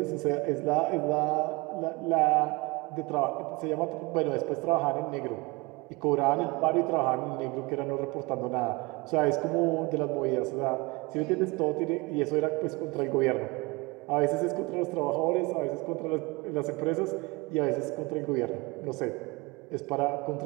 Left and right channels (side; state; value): left; quieter; 24.9 dB